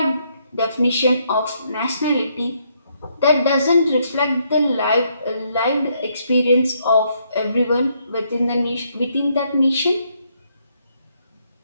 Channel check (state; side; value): inverted; both; correlation -0.73